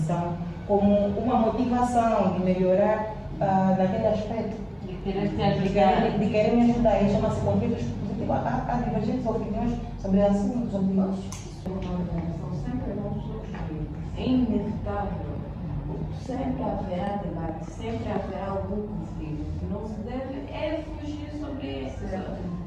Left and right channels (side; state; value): both; identical; correlation 1.00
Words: como uma motivação de melhorar naquele aspecto. De querer te ajudar. De querer me ajudar. E chama-se conflitos positivos. Há divergentes opiniões sobre assuntos, Uma organização sempre vão surgir. É inevitável. sempre haverá debate, sempre haverá algum conflito. Não se deve fugir sobre